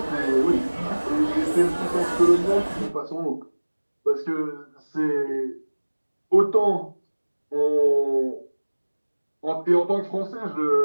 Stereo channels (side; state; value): both; inverted; correlation -1.00